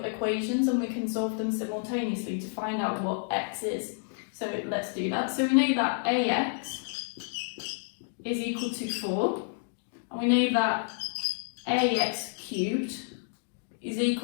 equations and we can solve them simultaneously to find out what x is. So let's do that. So we know that ax is equal to 4, and we know that ax cubed is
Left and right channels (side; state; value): right; silent; digital silence